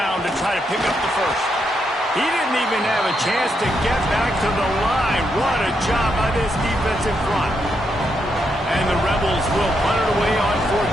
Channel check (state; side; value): normal; both; correlation 0.80